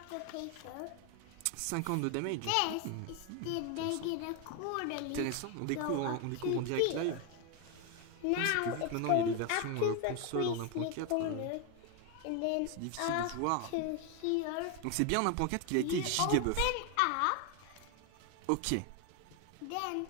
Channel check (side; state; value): both; different; correlation 0.01